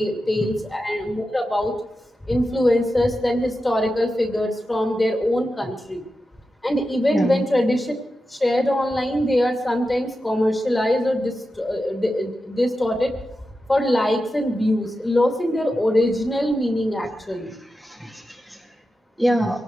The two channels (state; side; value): normal; both; correlation 0.91